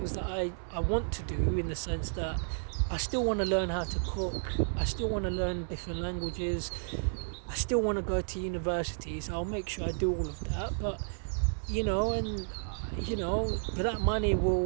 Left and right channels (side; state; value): left; silent; 56 dB below the other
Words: that I want to do, in the sense that I still want to learn how to cook. I still want to learn different languages. I still want to go to university, so I'll make sure I do all of that. But and but that money